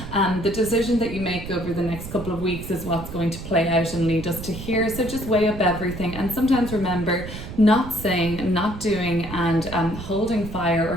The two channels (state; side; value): noise; right; rumble, 10 dB below the sound